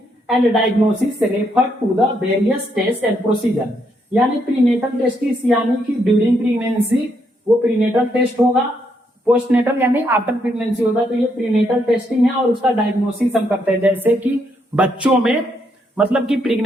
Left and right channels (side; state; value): both; normal; correlation 0.76